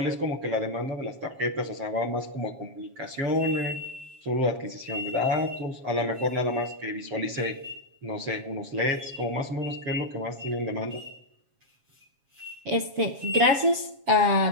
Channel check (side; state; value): left; late; 7.4 ms